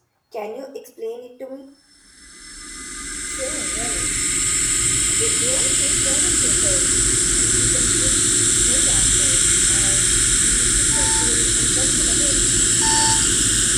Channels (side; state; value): both; identical; correlation 1.00